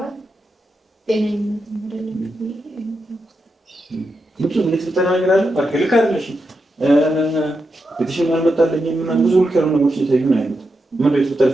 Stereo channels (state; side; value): normal; both; correlation 0.86